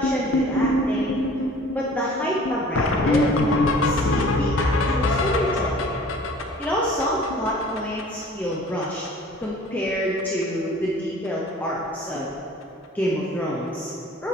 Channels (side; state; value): both; normal; correlation 0.48